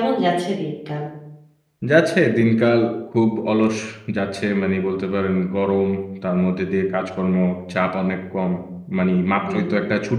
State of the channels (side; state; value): both; identical; correlation 1.00